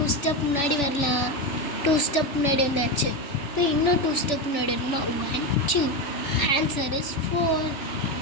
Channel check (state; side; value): late; right; 3.5 ms